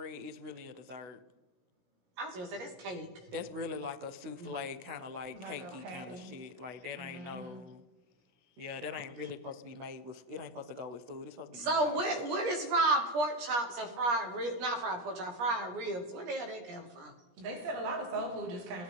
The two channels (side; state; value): left; late; 17 ms